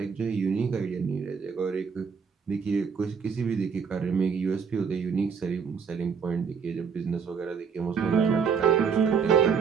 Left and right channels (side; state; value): left; quieter; 6.2 dB